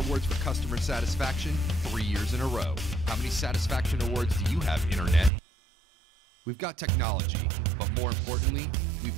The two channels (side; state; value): left; drops out; at 5.3 s